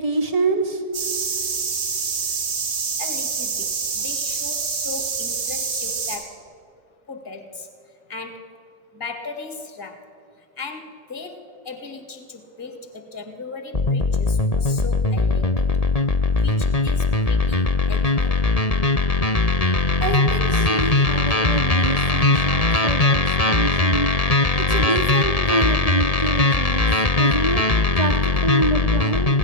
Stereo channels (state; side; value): late; right; 1.7 ms